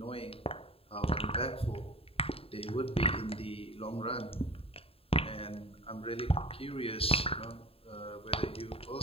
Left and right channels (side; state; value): right; late; 0.27 ms